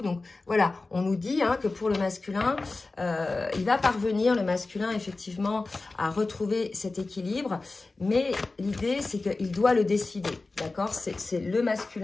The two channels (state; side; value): quieter; right; 3.5 dB